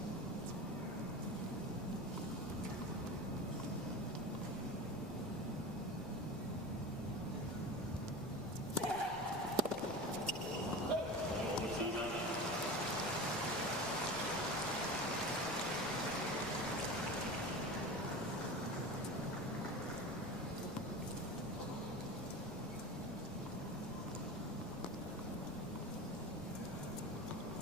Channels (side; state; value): left; noise; rumble, 14 dB below the sound